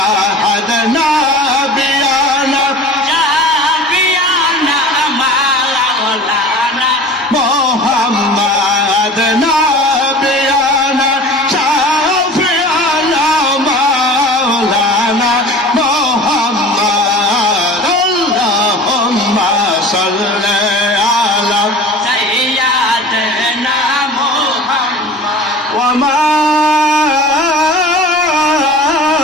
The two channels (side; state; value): both; normal; correlation 0.40